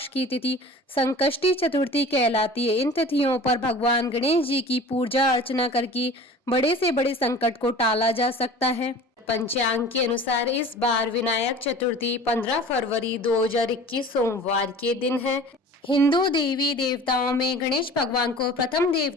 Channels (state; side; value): normal; both; correlation 0.42